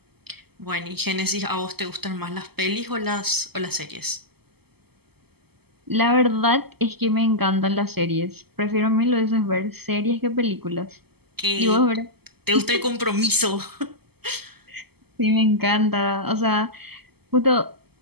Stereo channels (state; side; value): late; left; 0.96 ms